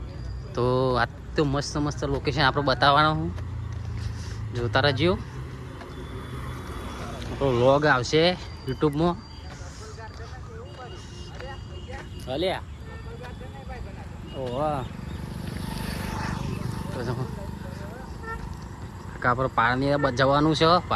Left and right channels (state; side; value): identical; both; correlation 1.00